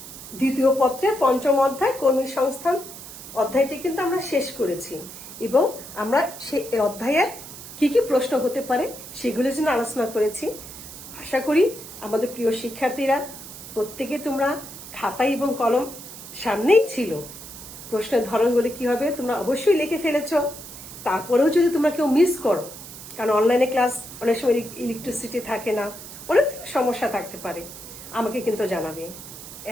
দ্বিতীয় পত্রের পঞ্চম অধ্যায় কর্মী সংস্থান অধ্যায়টি কিন্তু আমরা শেষ করেছি, এবং আমরা সেই অধ্যায়ের কি কি প্রশ্ন হতে পারে সেগুলোর জন্য আলোচনা করেছি। আশা করি আমাদের প্রিয় শিক্ষার্থীরা প্রত্যেকে তোমরা খাতা এবং কলম সামনেই ছিল, প্রশ্নের ধরনগুলি কি হবে তোমরা অবশ্যই লিখে ফেলেছ। তারপরেও যদি তোমরা কেউ মিস করো, কারণ অনলাইনে ক্লাস অনেক সময় ইলেকট্রিসিটি থাকে না, অনেক সমস্যা থাকতে পারে, আমাকে কিন্তু জানাবে,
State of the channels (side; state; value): right; noise; hiss, 13 dB below the sound